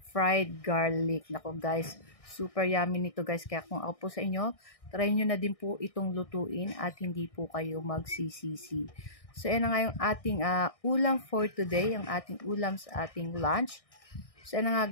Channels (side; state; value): right; late; 1.6 ms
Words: fried garlic. Nako guys, super yummy nito guys. Kaya kung ako po sa inyo, try nyo na din po itong lutuin at hindi po kayo magsisisi. So yan na nga yung ating ulam for today, ang ating ulam sa ating lunch. So yan na